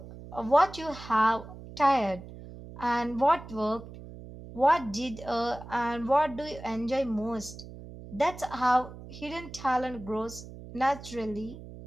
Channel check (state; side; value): noise; right; hum, 14 dB below the sound